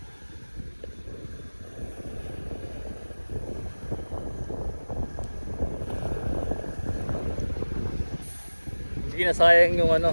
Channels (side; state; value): both; inverted; correlation -1.00